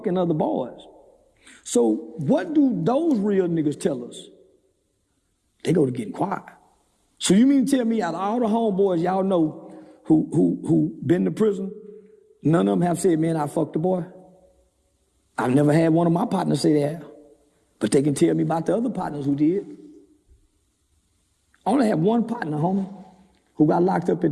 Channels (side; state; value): both; identical; correlation 1.00